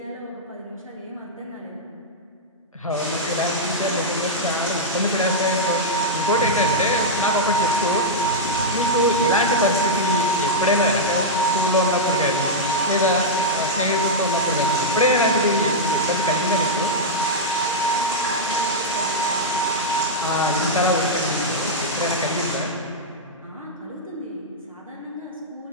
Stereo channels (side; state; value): both; normal; correlation -0.07